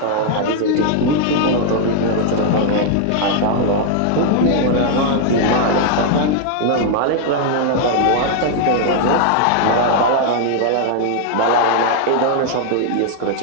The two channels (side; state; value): both; different; correlation 0.00